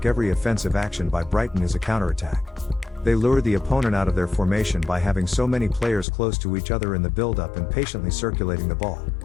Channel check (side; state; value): right; drops out; at 6.1 s